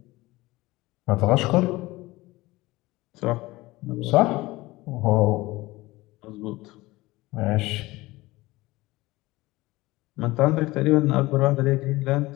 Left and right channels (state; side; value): quieter; right; 19.9 dB